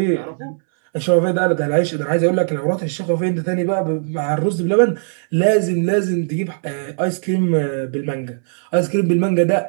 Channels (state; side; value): silent; left; 67 dB below the other